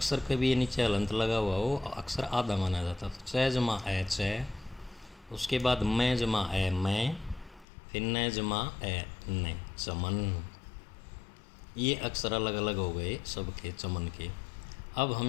के भी नीचे अलंत लगा हुआ वो अक्षर आधा माना जाता। तो च जमा ए च, उसके बाद मैं जमा ए मैं, फिर न जमा ए न, चमन। ये अक्षर अलग अलग हो गए सबके चमन के। अब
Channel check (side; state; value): right; drops out; at 7.7 s